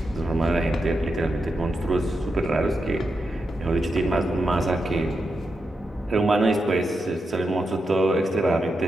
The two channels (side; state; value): both; normal; correlation 0.86